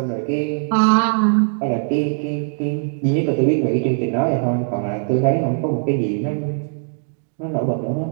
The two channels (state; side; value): silent; left; 66 dB below the other